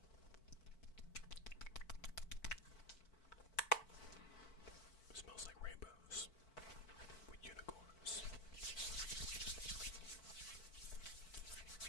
It smells like rainbows with unicorns.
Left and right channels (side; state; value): right; late; 4.5 ms